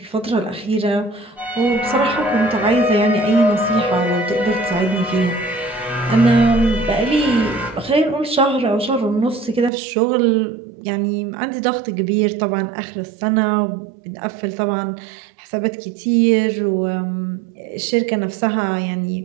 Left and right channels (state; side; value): drops out; left; at 9.7 s